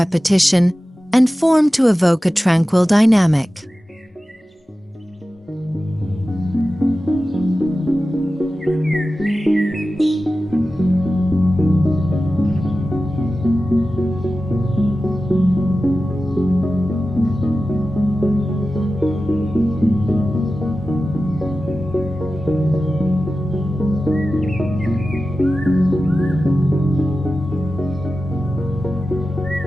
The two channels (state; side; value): normal; both; correlation 0.94